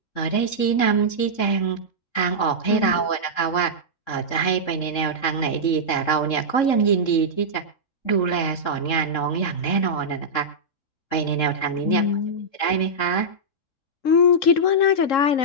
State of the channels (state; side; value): late; right; 3.7 ms